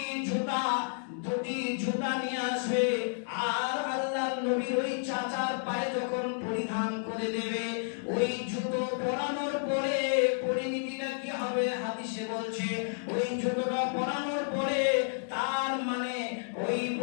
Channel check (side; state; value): right; silent; digital silence